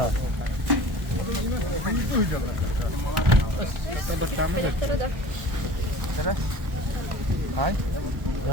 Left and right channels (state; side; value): late; left; 1.1 ms